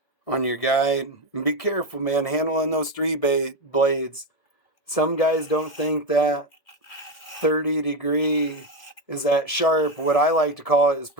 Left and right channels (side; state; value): right; late; 1.7 ms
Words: on your guide. And be careful, man, handling those 3 blades. Some guys don't think that 30-degree is that sharp. What I like to call it is